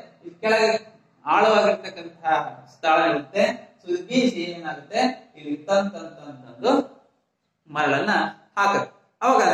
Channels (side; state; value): both; identical; correlation 1.00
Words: ಇಲ್ಲಿ ಕೆಳಗೆ ಆಳವಾಗಿರ್ತಕ್ಕಂತಹ ಸ್ಥಳ ಇರುತ್ತೆ. ಸೊ ಇದು ಬೀಸಿ ಏನಾಗುತ್ತೆ, ಇಲ್ಲಿ ತಂದು ಮರಳನ್ನ ಹಾಕುತ್ತೆ. ಅವಾಗ